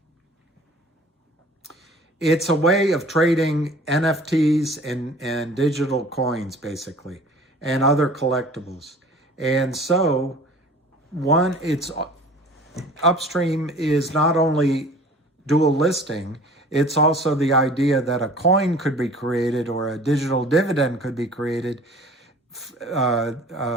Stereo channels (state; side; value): normal; both; correlation 0.47